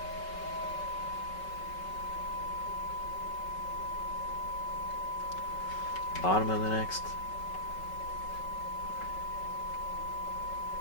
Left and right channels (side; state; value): right; late; 5.3 ms